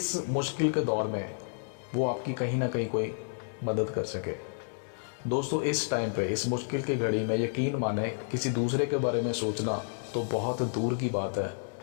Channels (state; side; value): silent; right; digital silence